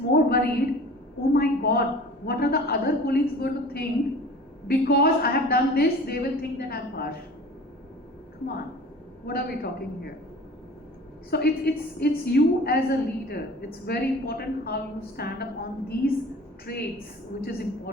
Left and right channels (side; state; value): both; normal; correlation 0.43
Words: worried, oh my God, what are the other colleagues going to think? Because I have done this, they will think that I'm harsh. Come on, what are we talking here? So it's you as a leader. It's very important how you stand up on these traits, which is